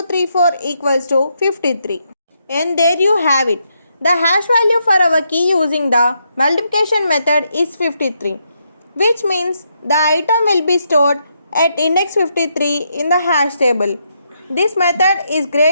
equals to 53. And there you have it. The hash value for our key using the multiplication method is 53, which means the item will be stored at index 53 in the hash table. This method is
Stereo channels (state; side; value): inverted; both; correlation -0.79